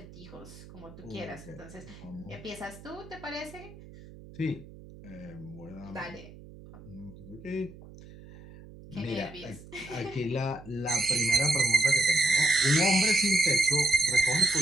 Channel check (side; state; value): right; noise; hum, 18 dB below the sound